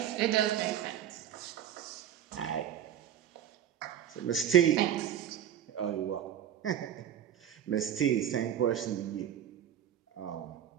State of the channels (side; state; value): left; quieter; 10.1 dB